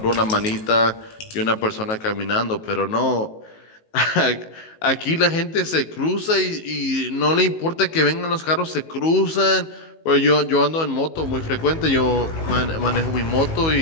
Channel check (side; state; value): right; late; 19 ms